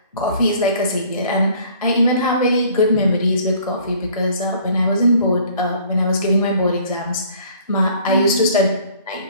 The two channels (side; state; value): both; inverted; correlation -0.55